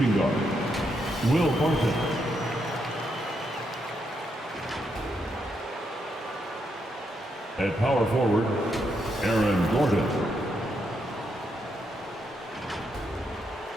guard, Will Barton. At power forward, Aaron Gordon.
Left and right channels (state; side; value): normal; both; correlation 0.80